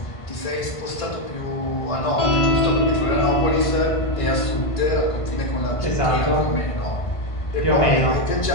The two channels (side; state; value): right; late; 1.5 ms